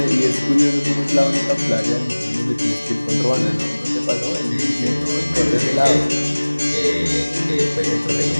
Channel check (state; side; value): inverted; both; correlation -1.00